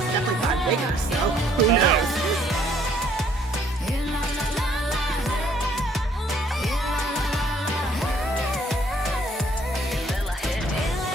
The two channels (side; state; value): both; normal; correlation 0.63